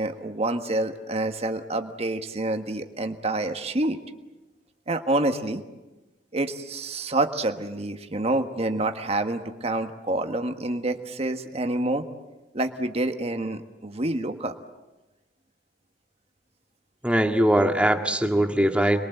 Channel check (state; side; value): normal; both; correlation 0.59